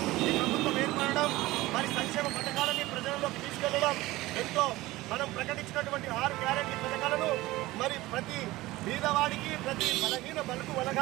ఈ ప్రభుత్వం ఏర్పడడం, మరి సంక్షేమ పథకాలని ప్రజల్లోకి తీసుకెళ్లడం, ఎంతో మనం ప్రకటించినటువంటి 6 గ్యారెంటీ పథకాలను మరి ప్రతి పేదవాడికి, ప్రతి బలహీన బలుగు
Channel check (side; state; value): left; quieter; 18.5 dB